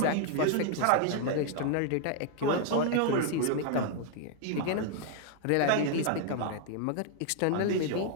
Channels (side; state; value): both; different; correlation 0.00